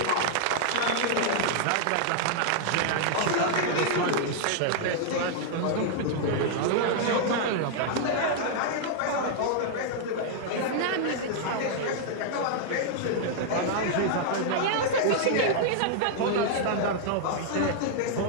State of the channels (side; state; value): both; different; correlation -0.01